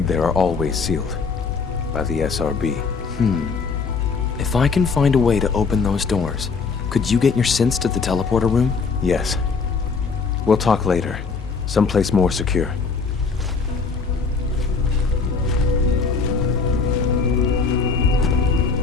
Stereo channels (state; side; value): quieter; right; 4.8 dB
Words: there are always sealed. By the SRB. If I can find a way to open those doors, could you get your synths to the teleporter room? Yes. We'll talk later. Someplace more secure.